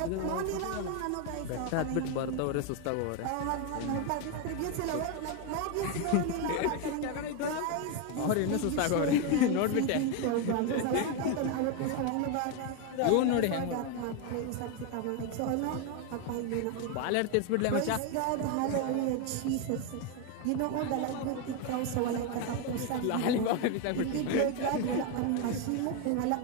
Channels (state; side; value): different; both; correlation 0.02